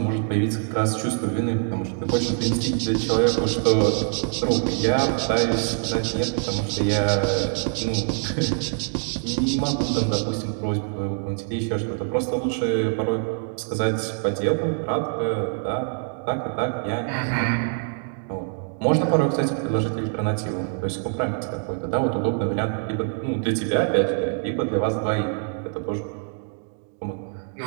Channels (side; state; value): left; silent; 56 dB below the other